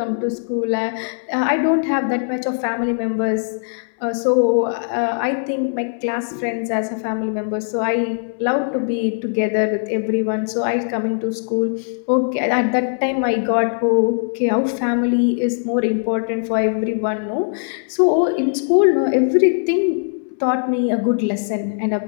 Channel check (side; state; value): right; silent; 66 dB below the other